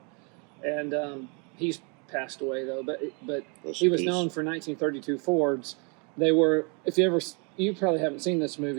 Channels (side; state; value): left; quieter; 34.5 dB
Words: And he's passed away though. But he was known for 1932 Fords. They were, you probably haven't seen this